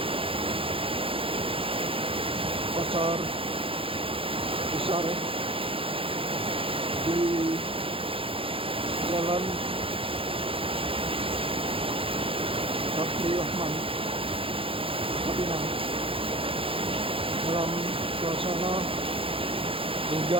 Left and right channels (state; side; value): late; left; 0.26 ms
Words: pasar besar di Jalan Sapri Rahman, Pinang, dalam suasana